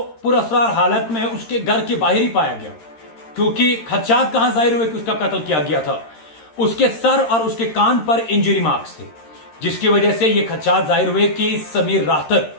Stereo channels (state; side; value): late; right; 13 ms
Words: पुरअसरार हालत में उसके घर के बाहर ही पाया गया। क्योंकि खदशात कहां जाहिर हुए कि उसका कत्ल किया गया था। उसके सर और उसके कान पर इंजरी मार्क्स थे, जिसकी वजह से यह खदशात जाहिर हुए कि समीर राथर